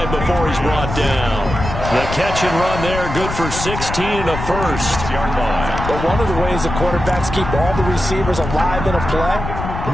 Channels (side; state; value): left; noise; rumble, 6 dB below the sound